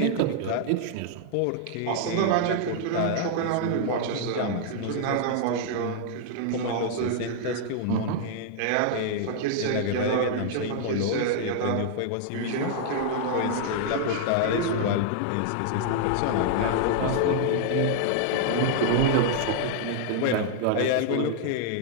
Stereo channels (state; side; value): different; both; correlation -0.01